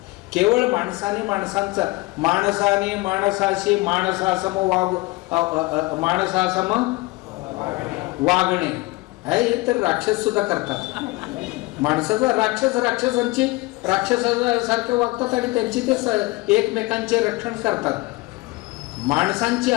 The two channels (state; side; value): quieter; right; 22.5 dB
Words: केवळ माणसाने माणसाशी माणसासम वागणे हे तर राक्षस सुद्धा करतात. माणसाचा राक्षसांची राक्षसासारखे वागतात आणि त्यांची ते एकमेकांचे रक्षण करतात. माणसांची